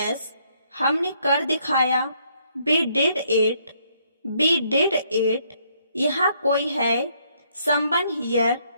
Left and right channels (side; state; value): both; inverted; correlation -0.70